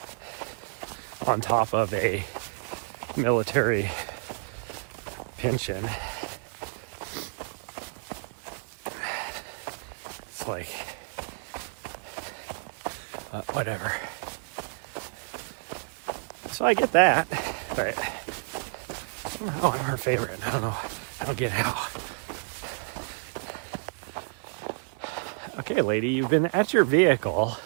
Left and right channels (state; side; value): silent; left; digital silence